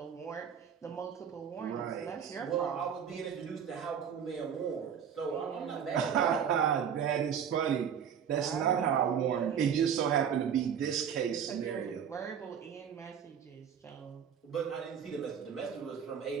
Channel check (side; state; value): left; quieter; 8.0 dB